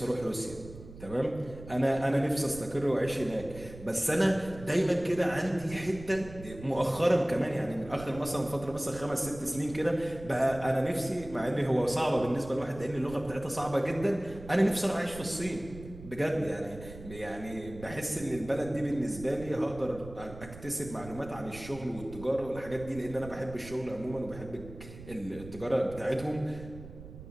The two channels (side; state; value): right; noise; rumble, 15 dB below the sound